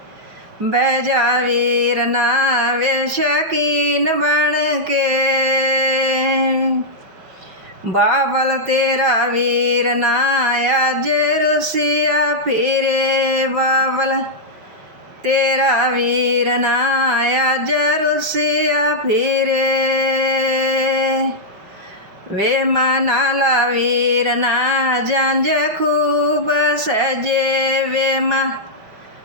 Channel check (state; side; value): late; left; 5.5 ms